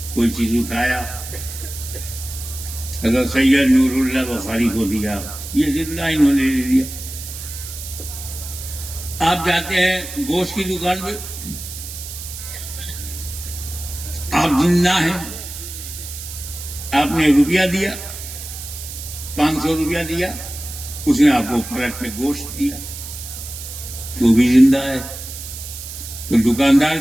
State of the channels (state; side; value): noise; right; hiss, 10 dB below the sound